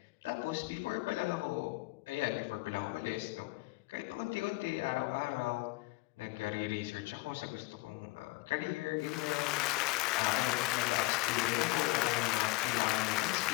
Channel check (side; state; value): right; quieter; 22.1 dB